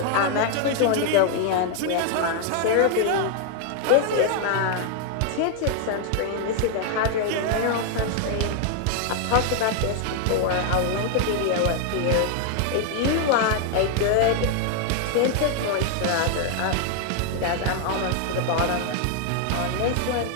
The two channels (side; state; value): both; different; correlation 0.00